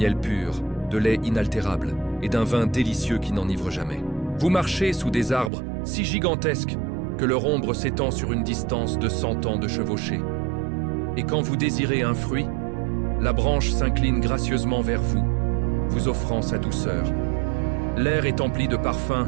pur, de lait inaltérable et d'un vin délicieux qui n'enivre jamais. Vous marchez sous des arbres si gigantesques que leur ombre s'étend sur une distance de 100 ans de chevauchée. Et quand vous désirez un fruit, la branche s'incline gracieusement vers vous, vous offrant sa douceur. L'air est empli de parfums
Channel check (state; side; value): drops out; left; at 5.5 s